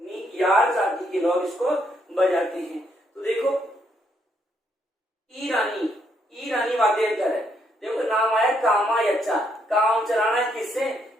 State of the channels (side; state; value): both; normal; correlation 0.74